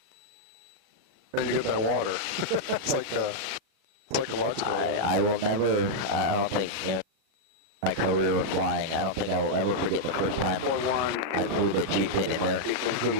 And you get that water. It's like psychological. I will never, I don't think, my career of flying, I don't think I will ever forget the first time I flew the Chieftain in there. Good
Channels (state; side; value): late; left; 37 ms